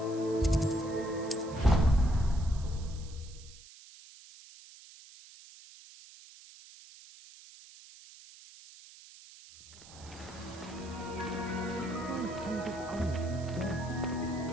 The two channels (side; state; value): right; noise; hiss, 19 dB below the sound